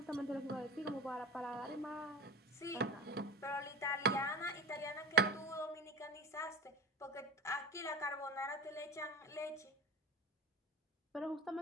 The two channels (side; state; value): both; normal; correlation 0.31